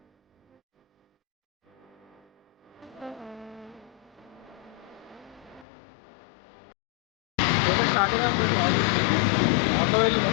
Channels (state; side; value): drops out; right; at 5.7 s